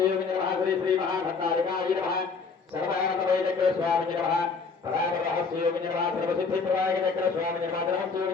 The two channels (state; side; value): quieter; right; 4.8 dB